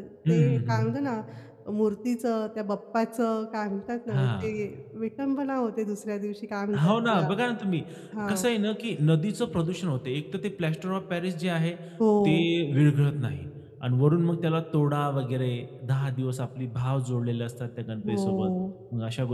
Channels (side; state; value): both; identical; correlation 1.00